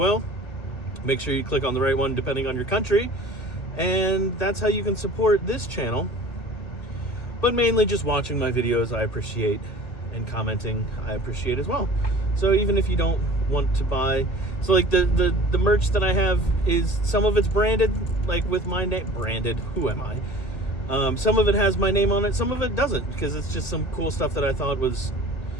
Make sure you click on the right one depending on your country, and that's how you can support this channel. But mainly just watching my videos I appreciate, and commenting I appreciate as well. So even if you don't want to buy, so like the merch that I have is, some of it's branded, like with my name, branded, who am I? Some of it has my name on it, some of it doesn't, because it's just some cool stuff that I thought was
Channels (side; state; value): right; late; 1.9 ms